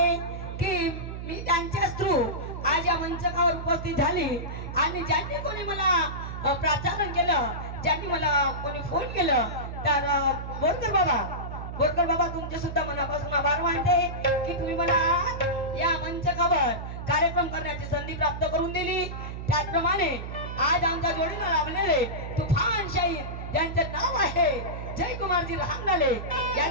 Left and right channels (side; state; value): right; noise; hum, 7 dB below the sound